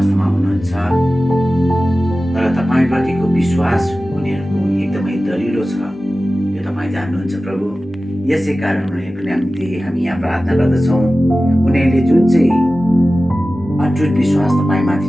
हुनुहुन्छ तर तपाईँप्रतिको विश्वास उनीहरूको एकदमै दरिलो छ, यो तपाईँ जान्नुहुन्छ प्रभु। यसै कारण उनीहरूको निम्ति हामी यहाँ प्रार्थना गर्दछौँ। उनीहरूले जुन चाहिँ अटुट विश्वास तपाईँमाथि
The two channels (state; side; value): normal; both; correlation 0.95